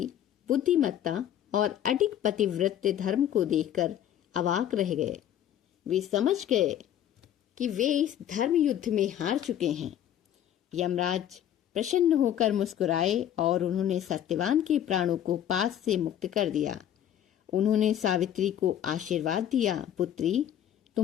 बुद्धिमत्ता और अडिग पतिव्रत धर्म को देखकर अवाक रह गए। वे समझ गए कि वे इस धर्म युद्ध में हार चुके हैं। यमराज प्रसन्न होकर मुस्कुराए और उन्होंने सत्यवान के प्राणों को पास से मुक्त कर दिया। उन्होंने सावित्री को आशीर्वाद दिया, पुत्री,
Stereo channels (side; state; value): right; quieter; 10.8 dB